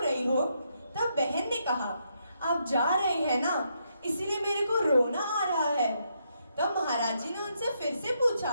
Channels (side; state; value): both; inverted; correlation -0.78